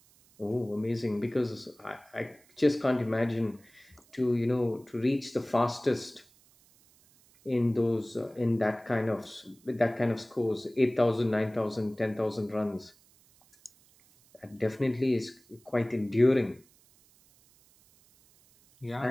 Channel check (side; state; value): right; noise; hiss, 30 dB below the sound